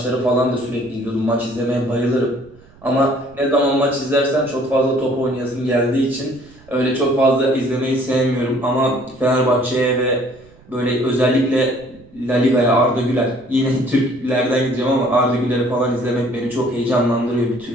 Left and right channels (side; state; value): right; noise; rumble, 26 dB below the sound